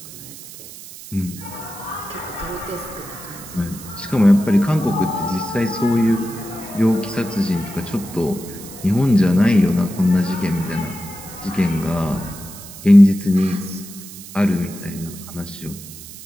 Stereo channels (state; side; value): noise; right; hiss, 15 dB below the sound